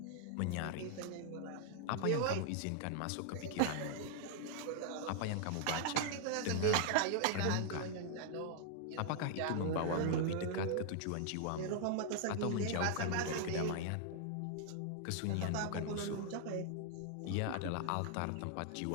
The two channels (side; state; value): both; different; correlation -0.01